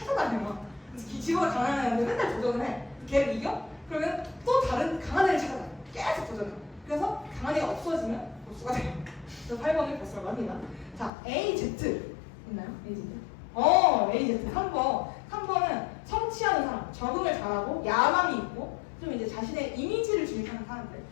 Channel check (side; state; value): right; drops out; at 11.1 s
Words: 지보다 강한 애한테 맨날 도전을 해. 걔를 이겨? 그러면 또 다른 강한 애를 찾아다녀. 계속 도전해. 그래서 강한 애가 없어지면 보스가 돼요. 그래서 8번을 보스라고 합니다. 자, AZ 있나요? AZ? AZ 3번은 성취하는 사람, 적응을 잘하고 야망이 있고 좀 이제 자신의 이미지를 주입하는 사람들